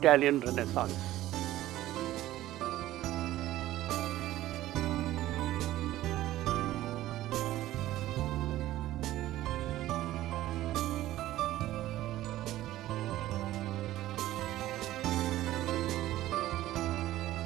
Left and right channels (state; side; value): quieter; left; 14.9 dB